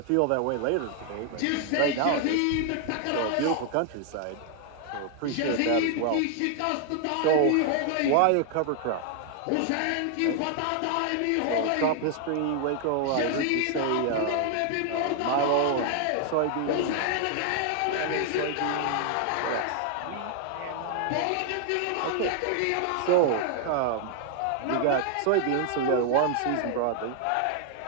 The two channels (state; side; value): different; both; correlation 0.00